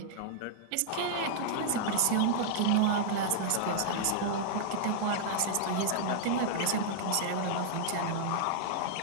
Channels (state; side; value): different; both; correlation -0.01